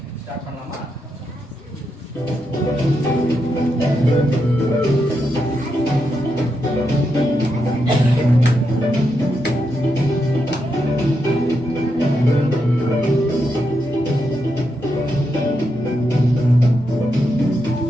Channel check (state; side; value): normal; both; correlation 0.84